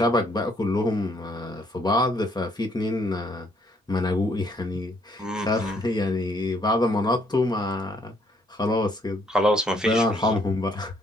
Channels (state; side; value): normal; both; correlation 0.68